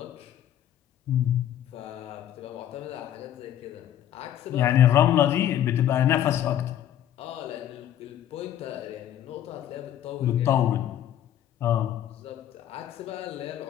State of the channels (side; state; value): right; quieter; 11.2 dB